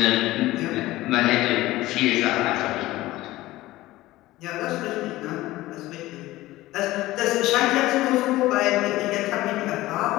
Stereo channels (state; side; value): quieter; right; 17.3 dB